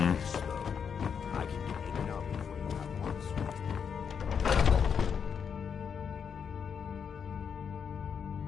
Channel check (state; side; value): quieter; right; 6.9 dB